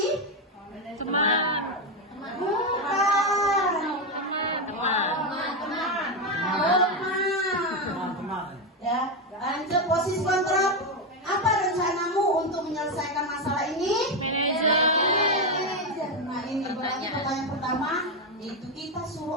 Teman. Bukan. Ya, lanjut posisi kontrol. Apa rencanamu untuk menyelesaikan masalah ini? Manajer. Nah, ini berarti pertanyaan pertama itu kita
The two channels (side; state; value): both; normal; correlation 0.08